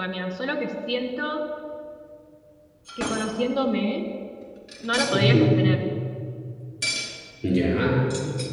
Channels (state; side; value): identical; both; correlation 1.00